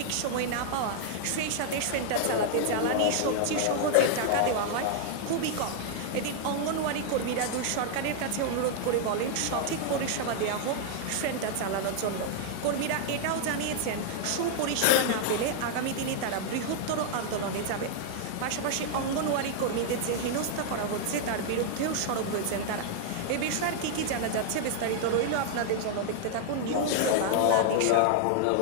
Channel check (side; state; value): both; different; correlation -0.01